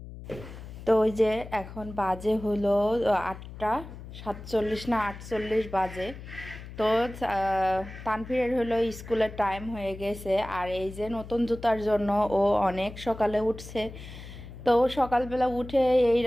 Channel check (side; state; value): left; noise; hum, 13 dB below the sound